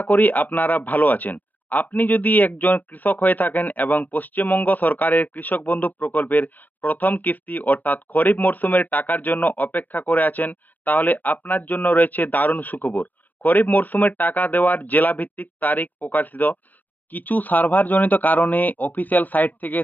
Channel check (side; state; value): right; late; 0.083 ms